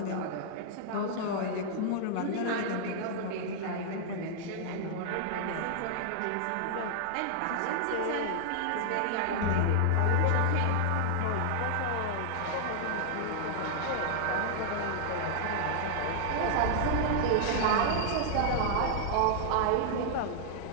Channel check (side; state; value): both; different; correlation -0.01